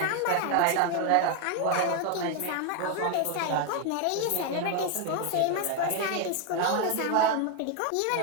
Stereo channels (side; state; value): both; different; correlation 0.01